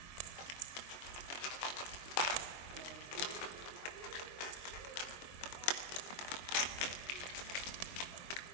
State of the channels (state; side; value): late; right; 22 ms